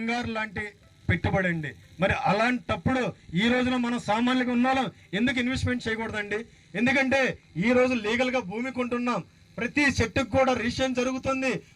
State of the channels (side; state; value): both; identical; correlation 1.00